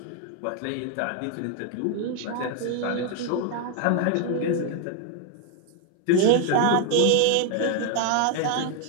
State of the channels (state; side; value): different; both; correlation 0.00